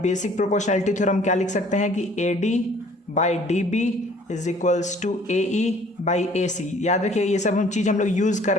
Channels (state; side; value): normal; both; correlation 0.55